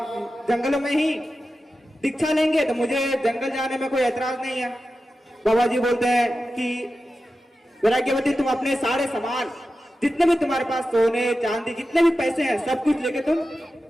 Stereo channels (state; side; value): normal; both; correlation 0.93